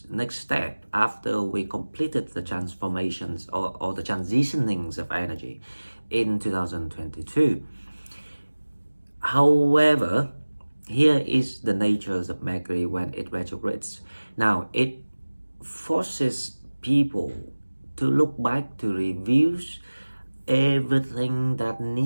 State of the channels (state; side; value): inverted; both; correlation -1.00